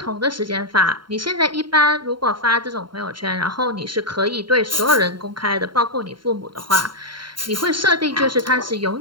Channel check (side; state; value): left; late; 0.72 ms